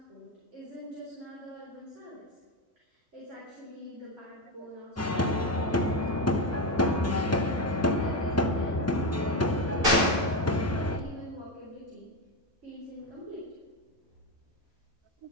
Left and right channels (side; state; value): both; normal; correlation 0.13